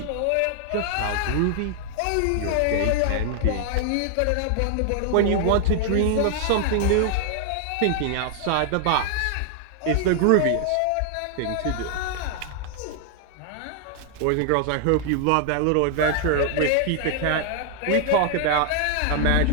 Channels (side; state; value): both; different; correlation 0.00